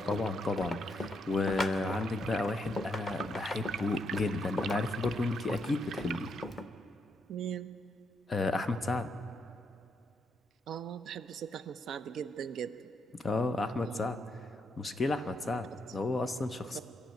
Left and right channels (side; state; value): both; normal; correlation 0.78